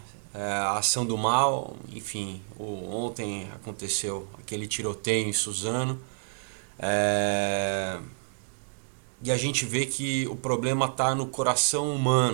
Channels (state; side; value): silent; left; digital silence